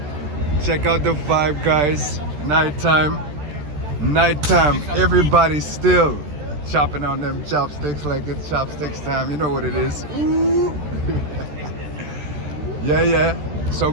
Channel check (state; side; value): late; left; 13 ms